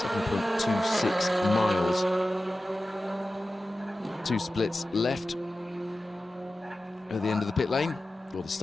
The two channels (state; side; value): normal; both; correlation 0.94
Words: miles. 2 splits left at the end of the pit lane, or the